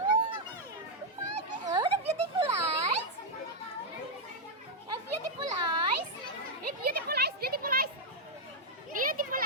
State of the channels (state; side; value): normal; both; correlation -0.02